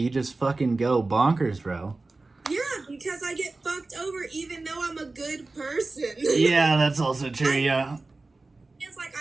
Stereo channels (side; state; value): left; quieter; 3.4 dB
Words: just fucking go bonkers, bro. Yeah, because I get fucked over even though I'm a good person. Yeah, that's also true. Yeah, It's like